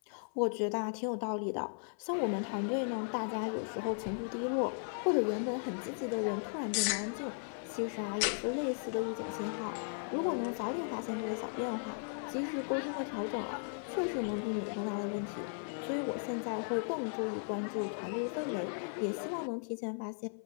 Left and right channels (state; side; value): silent; right; 53 dB below the other